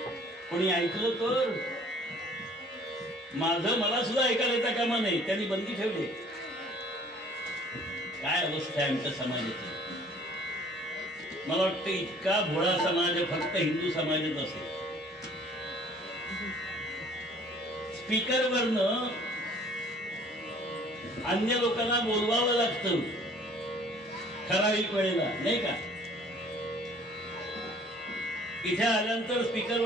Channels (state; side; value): normal; both; correlation 0.54